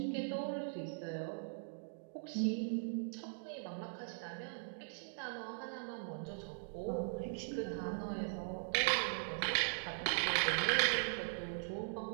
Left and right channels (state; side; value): silent; left; digital silence